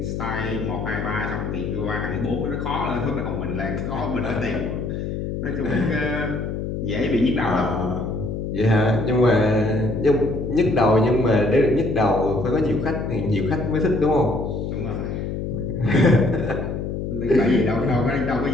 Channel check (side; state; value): left; noise; hum, 4 dB below the sound